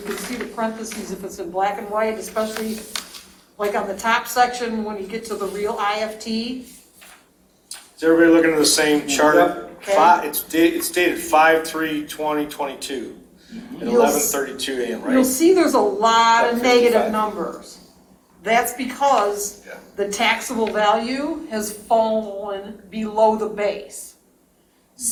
see the parentheses if it's in black and white, especially like on the top section when you get to the real IFT. Is everybody looking at the same chart? Okay. It's dated 5/3/2022 at You'll 11:32 a.m., You'll right? see there's a lot of Like negative 55. numbers. That's because Yeah. the taxable value has fallen below the base.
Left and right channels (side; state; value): both; identical; correlation 1.00